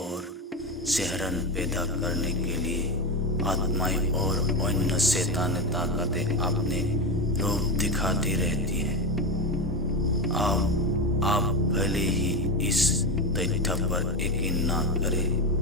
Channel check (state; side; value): normal; both; correlation 0.15